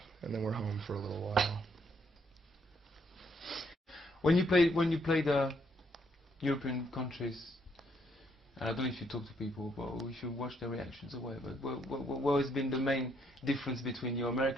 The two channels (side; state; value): both; normal; correlation 0.72